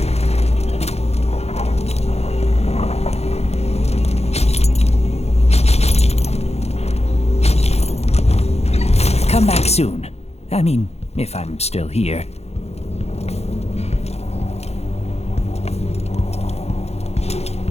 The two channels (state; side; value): late; right; 0.31 ms